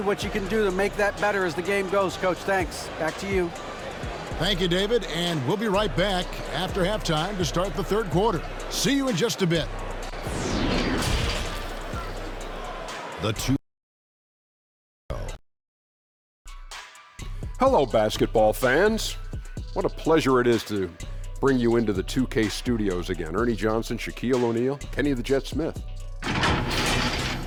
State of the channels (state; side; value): identical; both; correlation 1.00